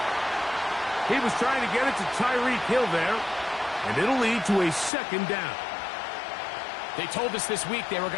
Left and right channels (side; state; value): right; drops out; at 4.9 s